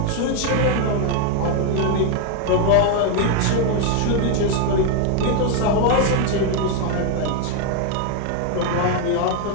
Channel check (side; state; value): both; different; correlation 0.01